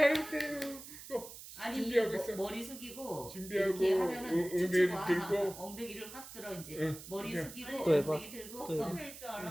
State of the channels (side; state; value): right; noise; hiss, 14 dB below the sound